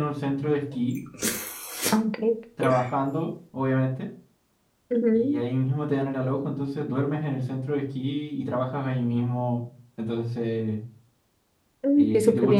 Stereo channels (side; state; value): both; identical; correlation 1.00